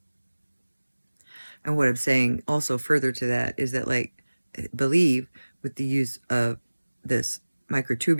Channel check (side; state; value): both; inverted; correlation -1.00